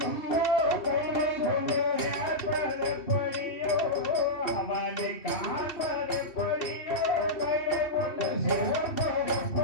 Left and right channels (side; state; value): right; late; 2.7 ms